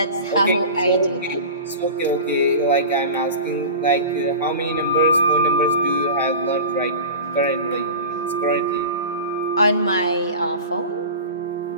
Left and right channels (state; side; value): inverted; both; correlation -0.32